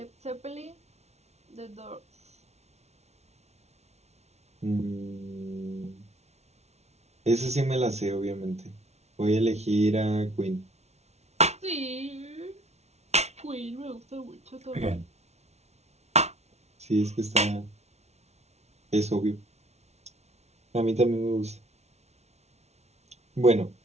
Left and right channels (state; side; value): late; left; 0.31 ms